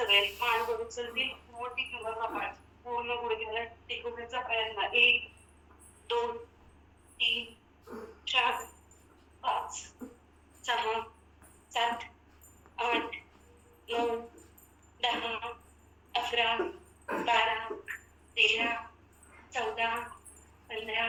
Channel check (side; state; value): both; identical; correlation 1.00